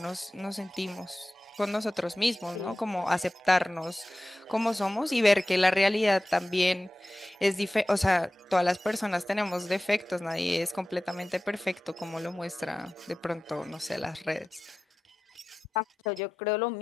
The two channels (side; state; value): both; normal; correlation 0.95